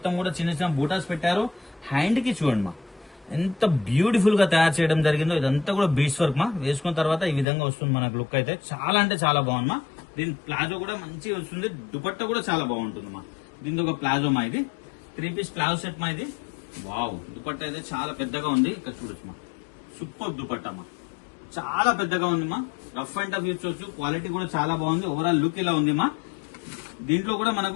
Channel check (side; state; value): right; drops out; at 7.5 s